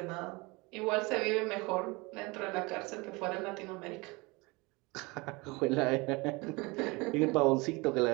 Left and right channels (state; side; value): quieter; left; 25.2 dB